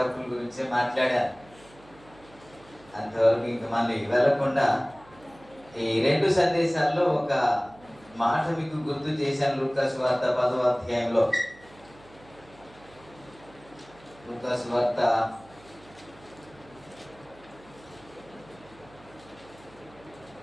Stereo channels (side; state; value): right; noise; hum, 24 dB below the sound